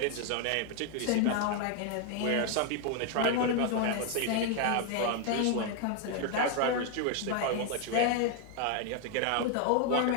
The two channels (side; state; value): both; different; correlation 0.01